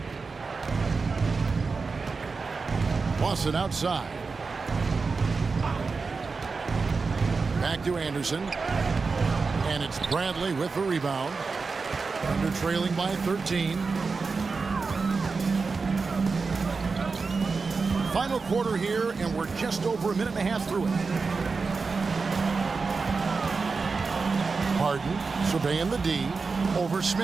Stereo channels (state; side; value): quieter; left; 4.5 dB